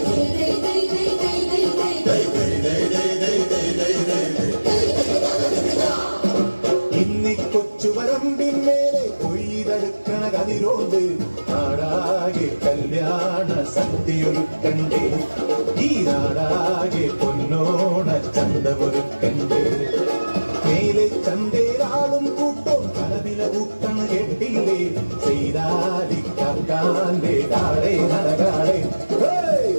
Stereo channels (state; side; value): inverted; both; correlation -1.00